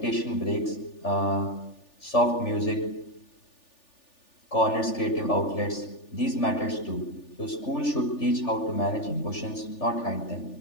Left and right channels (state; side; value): late; right; 3.4 ms